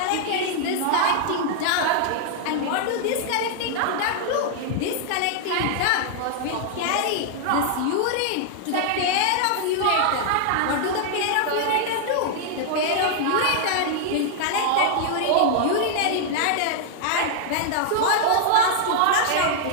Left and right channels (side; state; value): both; different; correlation -0.01